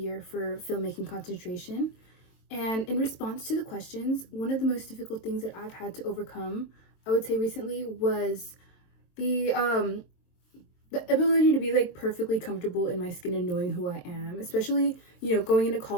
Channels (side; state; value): right; late; 23 ms